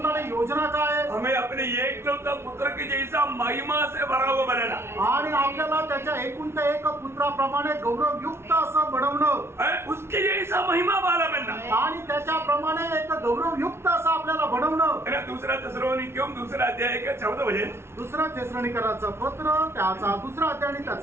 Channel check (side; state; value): left; late; 0.12 ms